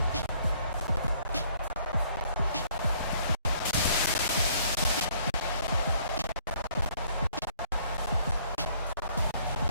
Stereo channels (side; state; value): both; inverted; correlation -0.62